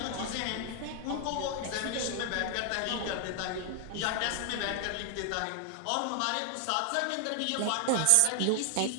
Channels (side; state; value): both; different; correlation 0.00